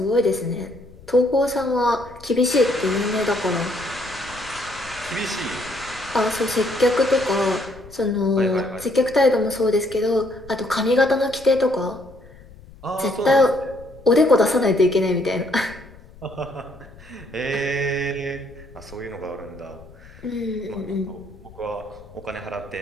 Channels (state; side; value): noise; left; rumble, 21 dB below the sound